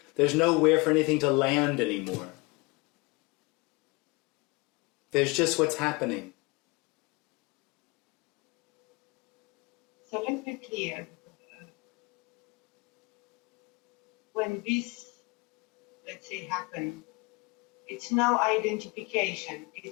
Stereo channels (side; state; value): right; quieter; 26.7 dB